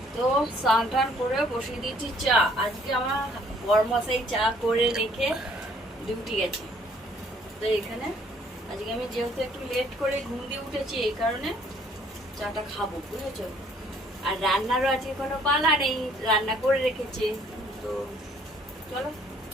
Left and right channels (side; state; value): both; normal; correlation 0.61